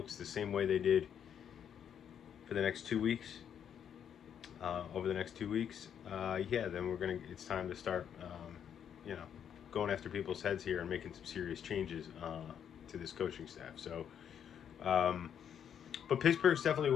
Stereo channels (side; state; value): right; quieter; 8.6 dB